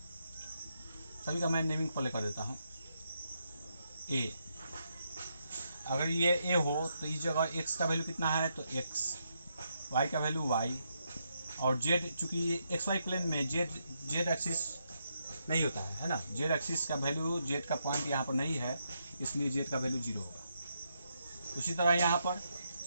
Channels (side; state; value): both; inverted; correlation -0.80